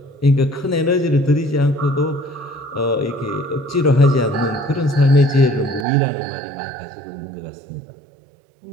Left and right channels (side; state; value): left; drops out; at 5.9 s